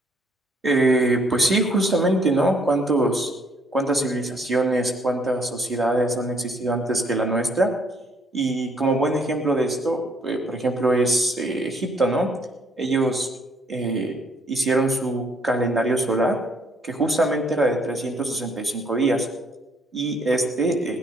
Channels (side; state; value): both; normal; correlation 0.66